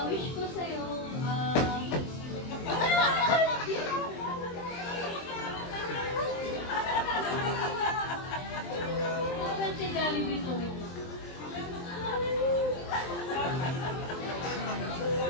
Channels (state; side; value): late; right; 23 ms